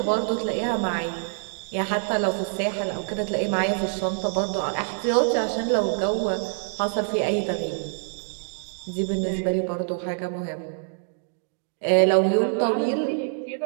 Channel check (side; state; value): left; silent; digital silence